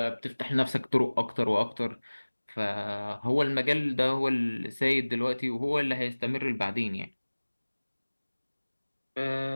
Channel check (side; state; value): both; inverted; correlation -1.00